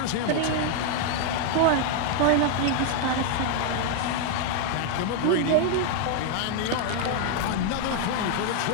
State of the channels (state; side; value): different; both; correlation 0.00